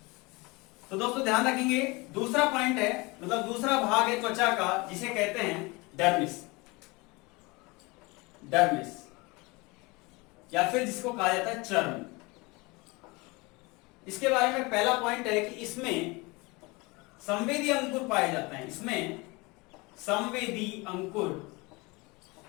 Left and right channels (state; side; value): quieter; right; 25.3 dB